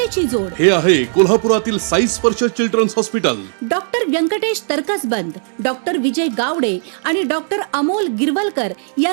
जोड. हे आहे कोल्हापुरातील Sai Sparsh children's hospital. Doctor Vyankatesh Taraksaband, doctor Vijay Gawade आणि डॉक्टर अमोल गिरवलकर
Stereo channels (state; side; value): silent; left; 64 dB below the other